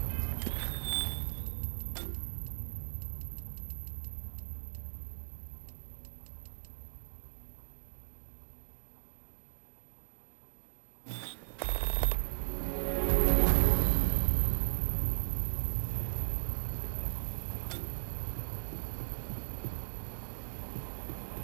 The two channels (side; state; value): left; silent; 53 dB below the other